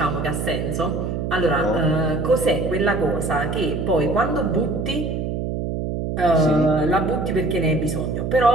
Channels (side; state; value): right; noise; hum, 3 dB below the sound